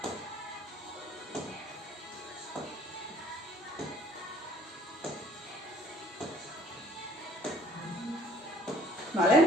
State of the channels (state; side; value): normal; both; correlation 0.58